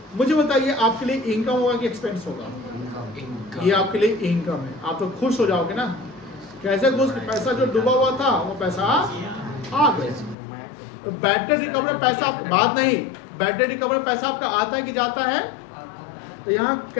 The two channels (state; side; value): drops out; right; at 10.4 s